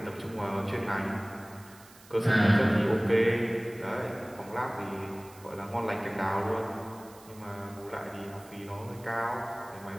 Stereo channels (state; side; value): noise; right; hiss, 23 dB below the sound